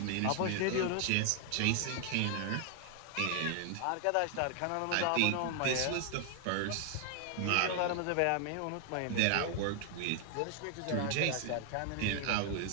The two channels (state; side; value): different; both; correlation 0.00